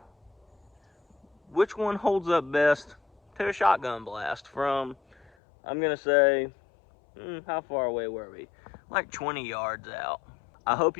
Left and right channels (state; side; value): drops out; right; at 5.3 s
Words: which one holds up best to a shotgun blast from I'm gonna say, how far away were we? Like 20 yards out. I hope